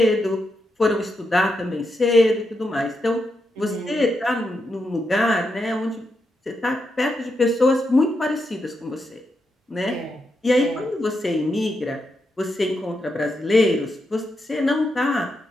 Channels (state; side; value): normal; both; correlation 0.84